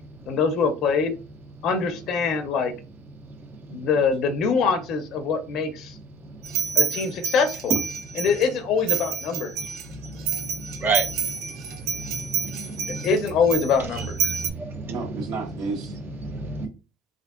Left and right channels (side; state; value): both; normal; correlation 0.45